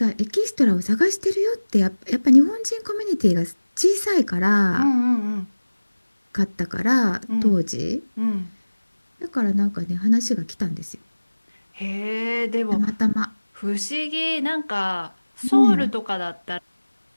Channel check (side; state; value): both; inverted; correlation -1.00